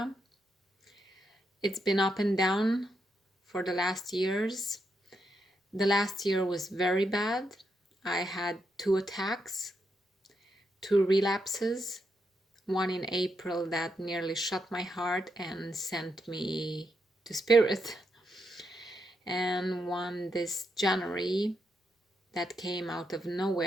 It's been up and down for the last years. The last year was very bad. I had 2 attacks, 2 relapses, one in April that nearly shut my heart and sent me to spirit, and one this January that came out of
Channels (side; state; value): both; normal; correlation 0.81